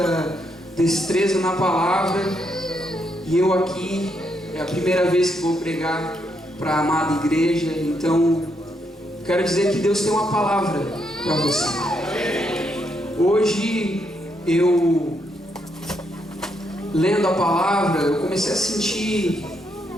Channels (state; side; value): normal; both; correlation 0.78